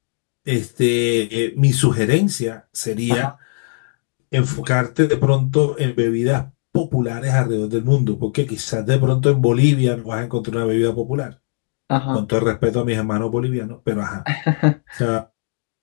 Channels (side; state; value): right; silent; 55 dB below the other